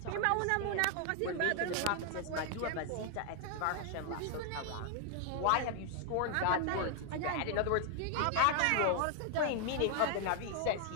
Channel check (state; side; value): different; both; correlation 0.00